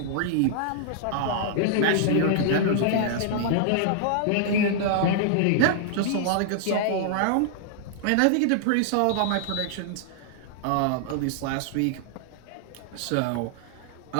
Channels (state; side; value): different; both; correlation -0.01